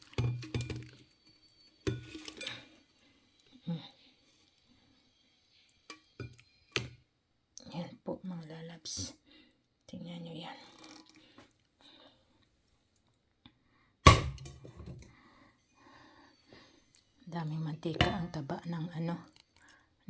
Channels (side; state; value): both; identical; correlation 1.00